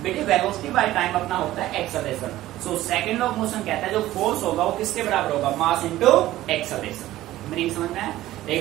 बेटे वेलोसिटी बाय टाइम अपना होता है acceleration. So second law of motion कहता है जो फोर्स होगा वो किसके बराबर होगा, मास इनटू एक्सेलरेशन। मीनिंग समझ में है?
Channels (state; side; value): quieter; left; 15.2 dB